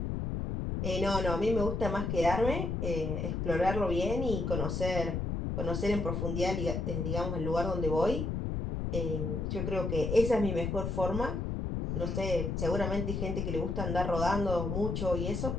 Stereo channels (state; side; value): noise; left; rumble, 2 dB below the sound